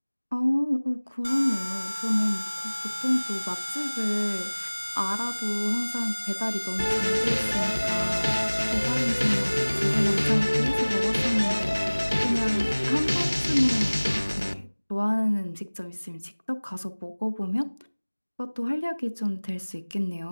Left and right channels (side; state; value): both; inverted; correlation -1.00